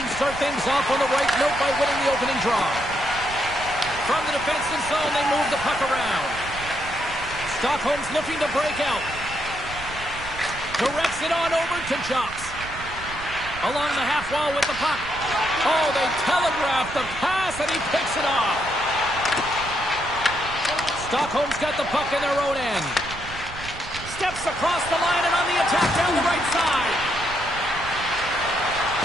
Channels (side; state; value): right; noise; rumble, 13 dB below the sound